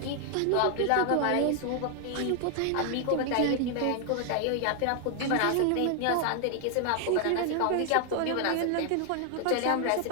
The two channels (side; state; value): both; different; correlation 0.00